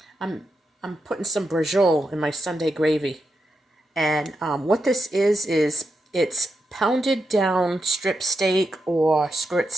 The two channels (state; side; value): normal; both; correlation 0.86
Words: I'm putting some brajol in my Sunday gravy. And what this is it's pounded down strip steak or skirt